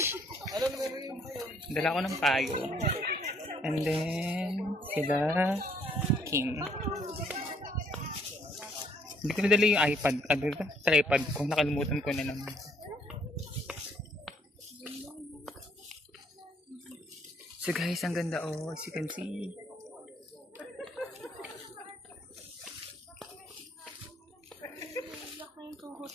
Dala ko ng payo. And then, sila Kim. Hindi ko nadala yung iPad. Tripod ko. Nakalimutan ko na naman. So guys, ang ganda oh. As you can see.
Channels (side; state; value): both; normal; correlation 0.66